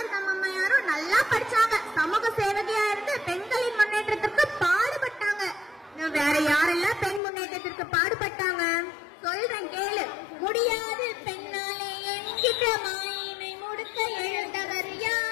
அம்மையாரும் நல்லா படிச்சாங்க. சமூக சேவகியா இருந்து பெண்களின் முன்னேற்றத்திற்கு பாடுபட்டாங்க. வேற யாரெல்லாம் பெண் முன்னேற்றத்திற்கு பாடுபட்டாங்க சொல்றேன் கேளு. முடியாது பெண்ணாலே என்கிற மாயினை முடுக்க எழுந்தவர்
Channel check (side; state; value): right; drops out; at 7.2 s